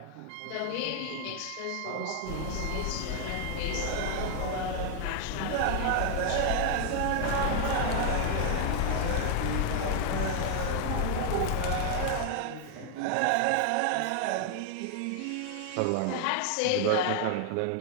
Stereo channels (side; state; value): both; different; correlation 0.00